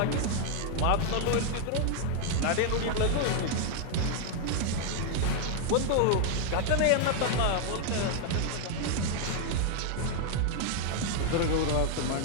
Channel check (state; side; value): different; both; correlation 0.00